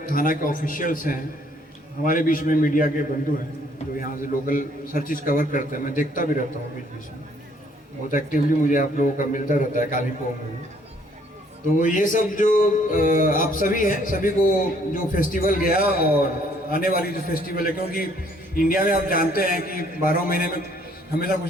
थाना के ऑफिशियल्स हैं, हमारे बीच में मीडिया के बंधु हैं जो यहाँ से लोकल हर चीज़ कवर करते हैं। मैं देखता भी रहता हूँ बीच बीच में, बहुत एक्टिवली मुझे आप लोगों का मिलता रहता है काली पोंग में। तो ये सब जो आप सभी हैं, सभी को जो फेस्टिवल गया और आने वाली जो फेस्टिवल है, क्योंकि इंडिया में आप जानते हैं कि 12 महीने में हमेशा कुछ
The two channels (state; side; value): normal; both; correlation 0.63